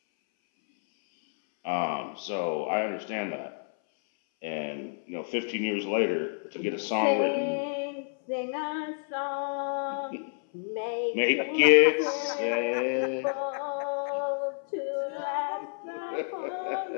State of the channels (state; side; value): silent; right; 58 dB below the other